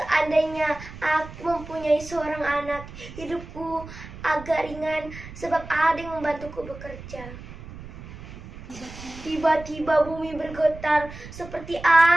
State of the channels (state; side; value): noise; right; rumble, 14 dB below the sound